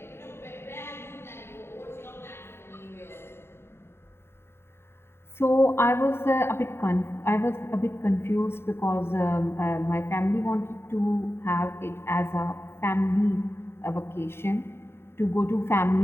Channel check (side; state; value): right; late; 0.12 ms